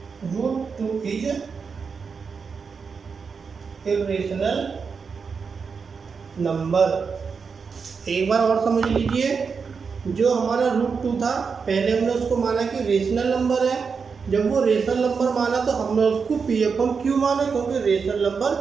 √2 is irrational number. एक बार और समझ लीजिए, जो हमारा √2 था, पहले हमने उसको माना कि रेशनल नंबर है। जब वो रेशनल नंबर माना तो हमने उसको P/Q माना, क्योंकि रेशनल नंबर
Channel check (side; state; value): left; quieter; 5.5 dB